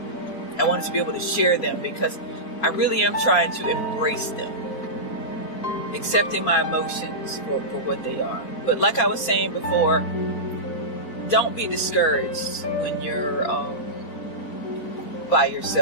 I wanted to be able to share them because I really am trying to embrace them, accepting my emotions for what they are. But like I was saying before, don't be discouraged when you're by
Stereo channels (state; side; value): late; right; 4.3 ms